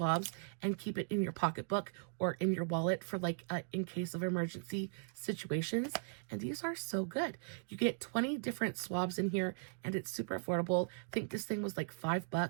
and keep it in your pocketbook or in your wallet for like in case of emergency situations. And these are so good. You get 20 different swabs in here, and it's super affordable. I think this thing was like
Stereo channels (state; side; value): silent; left; digital silence